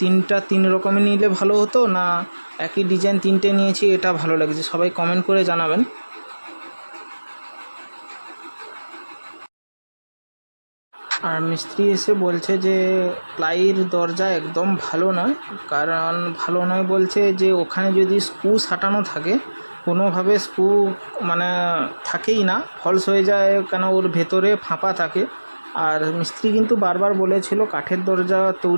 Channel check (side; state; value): both; inverted; correlation -1.00